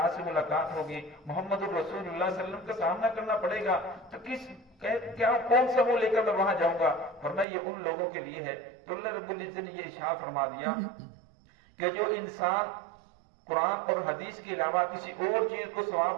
سے ملاقات ہوگی، محمد الرسول اللہ صلی اللہ علیہ وسلم کا سامنا کرنا پڑے گا، تو کیا کون سا وہ لے کر میں وہاں جاؤں گا؟ فرمایا یہ ان لوگوں کے لیے ہے۔ تو اللہ رب العزت نے یہ ارشاد فرما دیا کہ جو انسان قرآن اور حدیث کے علاوہ کسی اور چیز کو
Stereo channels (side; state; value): left; drops out; at 7.5 s